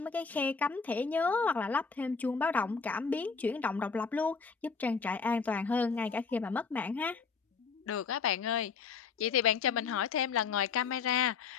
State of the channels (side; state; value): right; quieter; 5.4 dB